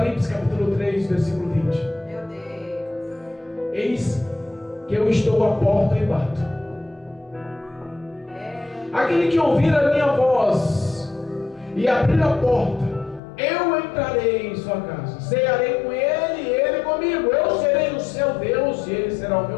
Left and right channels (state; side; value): drops out; right; at 13.2 s